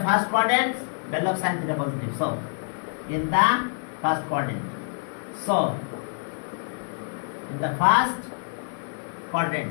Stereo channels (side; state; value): right; silent; 58 dB below the other